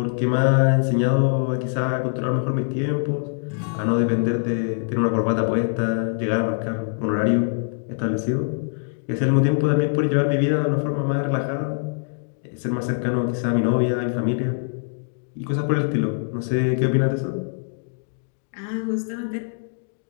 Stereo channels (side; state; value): right; silent; digital silence